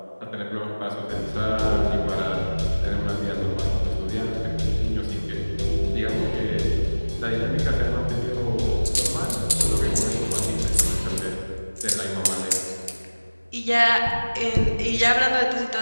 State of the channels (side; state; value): both; inverted; correlation -1.00